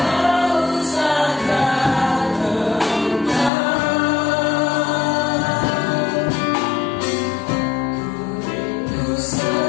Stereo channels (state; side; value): drops out; right; at 3.5 s